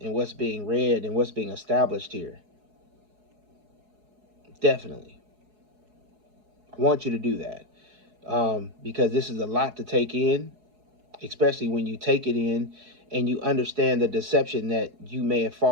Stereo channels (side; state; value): left; late; 4.7 ms